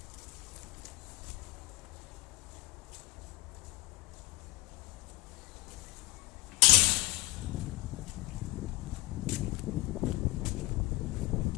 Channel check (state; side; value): quieter; right; 21.3 dB